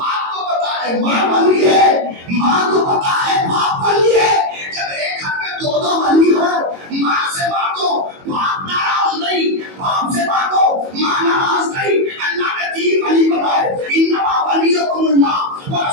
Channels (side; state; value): left; late; 22 ms